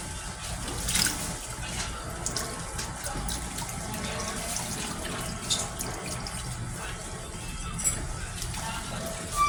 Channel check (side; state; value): both; identical; correlation 1.00